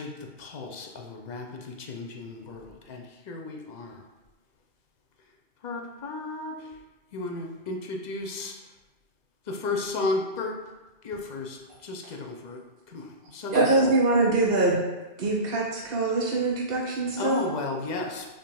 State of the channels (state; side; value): late; left; 2.0 ms